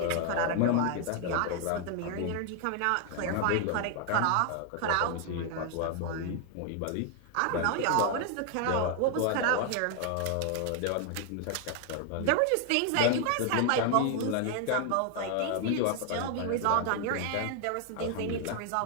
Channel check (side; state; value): both; different; correlation 0.00